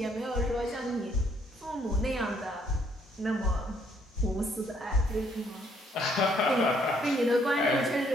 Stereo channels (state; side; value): normal; both; correlation 0.67